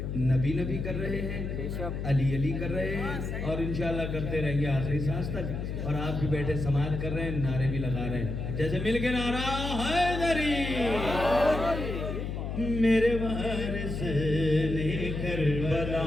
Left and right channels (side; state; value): left; noise; hum, 4 dB below the sound